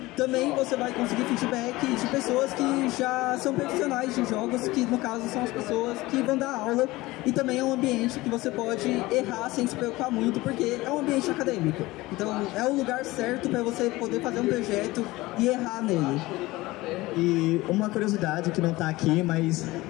Também você vai conseguir feedback de pessoas que já são profissionais de jogos, que no caso são as pessoas que vão dar aula, e também é um ambiente que você pode errar sem se preocupar muito, porque é um ambiente acadêmico. Então é o lugar certo para você poder fazer um projeto e errar nele. E uma curiosidade que não está aqui, mas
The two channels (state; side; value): quieter; right; 19.7 dB